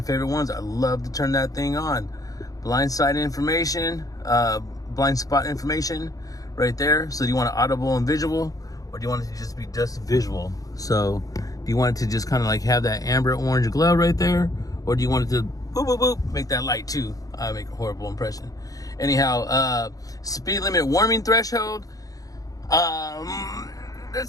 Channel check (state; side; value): late; right; 0.17 ms